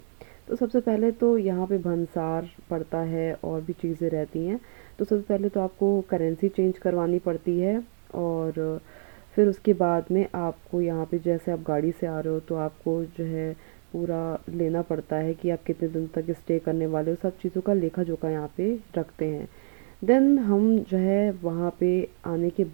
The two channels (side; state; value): left; silent; digital silence